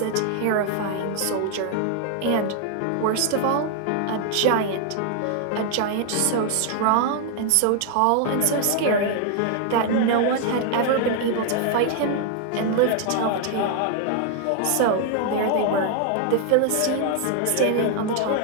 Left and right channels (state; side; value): different; both; correlation 0.00